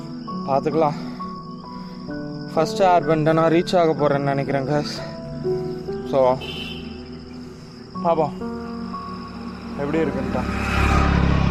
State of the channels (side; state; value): both; identical; correlation 1.00